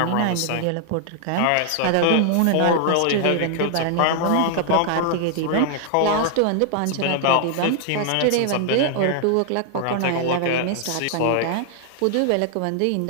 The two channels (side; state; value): both; different; correlation 0.00